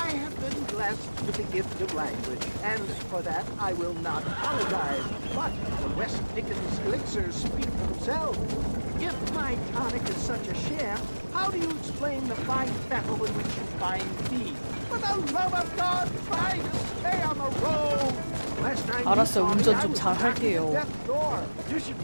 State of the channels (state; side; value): inverted; both; correlation -1.00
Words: have been blessed with the gift of language, and for that I will not apologize. But the West Dickens elixirs speak for themselves. If my tonic is such a share, how do you explain the fine fettle in which you find me? For the love of God, try to stay on the road! 알았어, 운전 좀 잘 할게요. You should